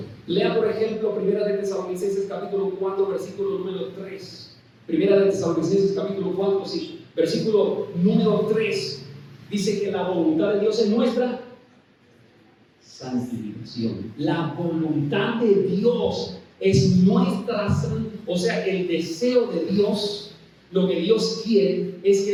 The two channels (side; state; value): both; identical; correlation 1.00